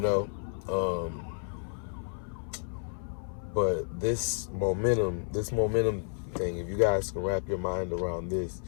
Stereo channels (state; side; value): silent; right; 57 dB below the other